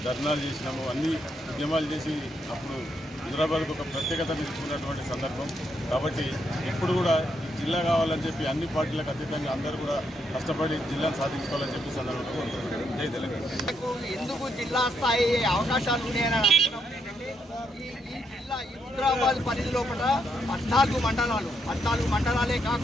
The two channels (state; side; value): normal; both; correlation 0.78